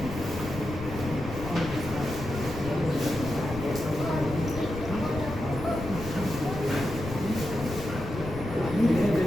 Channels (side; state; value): left; noise; rumble, 9 dB below the sound